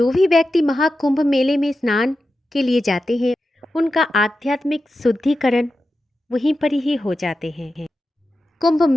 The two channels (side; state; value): both; normal; correlation 0.91